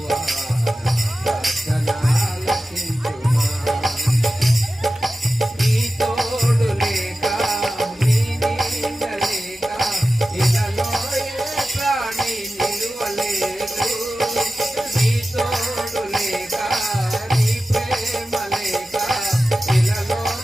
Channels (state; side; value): normal; both; correlation 0.94